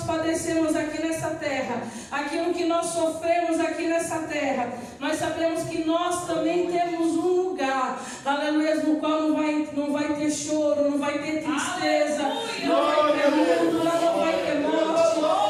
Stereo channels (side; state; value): both; identical; correlation 1.00